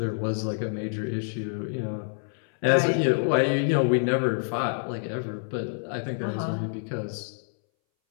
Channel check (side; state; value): right; silent; 60 dB below the other